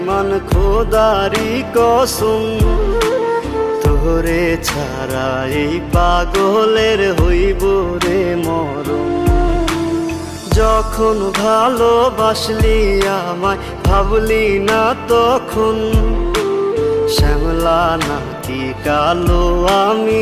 খোদারি কসম। তোরে ছাড়া এই পাগলের হইব রে মরণ। যখন ভালোবাসলি আমায় ভাবলি না তখন, শ্যামলা নাকি কালো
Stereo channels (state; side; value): identical; both; correlation 1.00